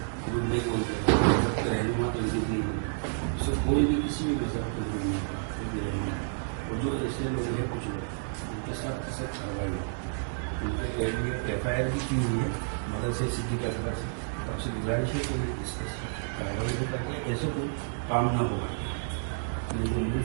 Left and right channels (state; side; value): silent; left; digital silence